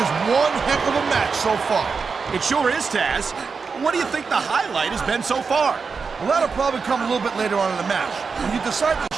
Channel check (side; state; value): left; quieter; 5.1 dB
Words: one heck of a match so far. It sure is, Taz. What do you think the highlight has been so far? Well, that'll probably come a little bit later on in the match. When you decide to